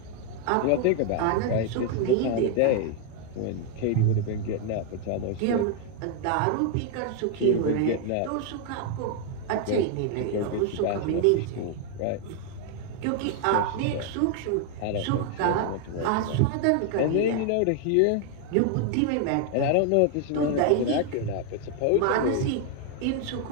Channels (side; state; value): both; different; correlation 0.00